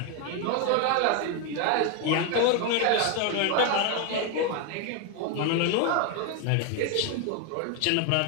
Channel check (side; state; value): both; different; correlation 0.01